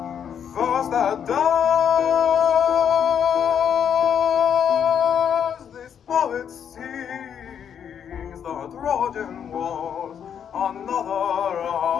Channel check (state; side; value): quieter; right; 8.3 dB